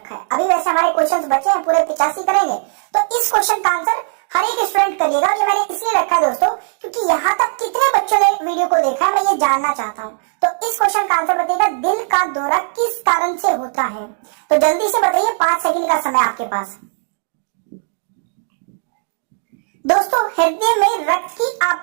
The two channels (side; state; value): left; silent; digital silence